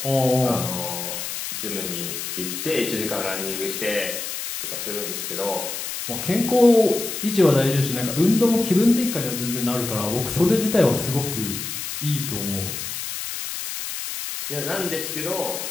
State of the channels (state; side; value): noise; left; hiss, 5 dB below the sound